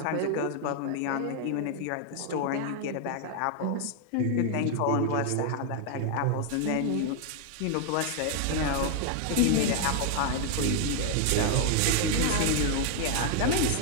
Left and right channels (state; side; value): different; both; correlation 0.00